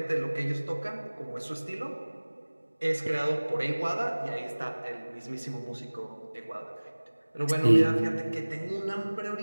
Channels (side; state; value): both; inverted; correlation -1.00